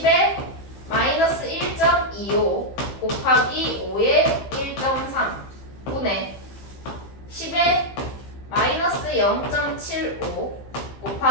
마이너스 1.25 곱하기 5에 1.3 분의 10에 마이너스 0.75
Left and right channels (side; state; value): right; late; 15 ms